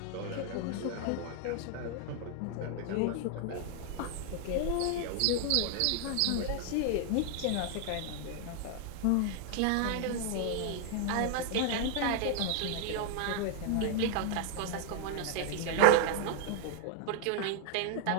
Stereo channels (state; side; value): different; both; correlation 0.00